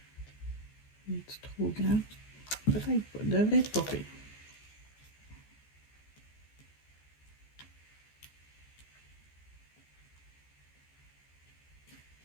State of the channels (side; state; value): right; late; 14 ms